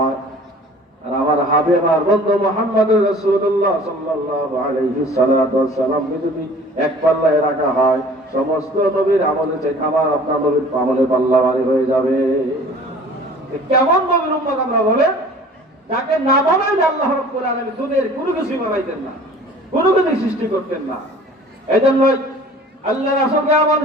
আর আমার হাবিব আর বন্ধু মুহাম্মদুর রাসূলুল্লাহ সাল্লাল্লাহু আলাইহি সাল্লাম যদি এক পাল্লায় রাখা হয়, সমস্ত নবীর আমলে চাই আমার আপনার নবীর আমলে পাল্লা ভারী হয়ে যাবে। কেমন নবীর উম্মত আমরা বলে, যাকে না বানাইলে আল্লাহ রাব্বুল আলামিন দুনিয়ার কোনো কিছু বানাইতেন না, কোনো কিছু সৃষ্টি করতেন না। এজন্য আল্লাহ রাসূলকে এমন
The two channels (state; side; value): normal; both; correlation 0.47